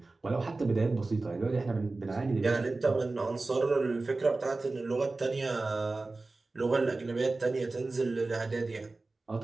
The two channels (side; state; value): left; quieter; 3.4 dB